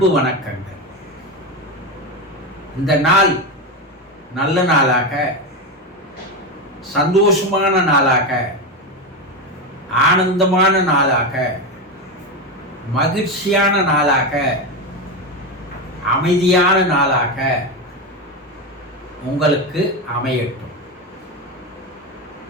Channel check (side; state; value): both; normal; correlation 0.15